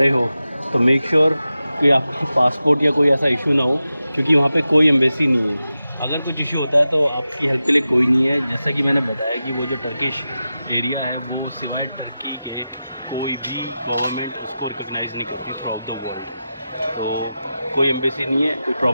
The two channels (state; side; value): inverted; both; correlation -0.92